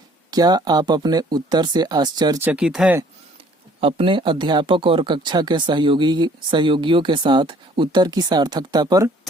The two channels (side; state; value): both; normal; correlation 0.57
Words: क्या आप अपने उत्तर से आश्चर्यचकित हैं? अपने अध्यापक और कक्षा के सहयोगियों के साथ उत्तर की सार्थकता पर